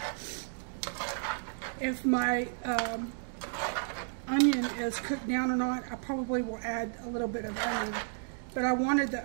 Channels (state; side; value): silent; left; digital silence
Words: if my onion is cooked down or not, I probably will add a little bit of onion, but I wanted the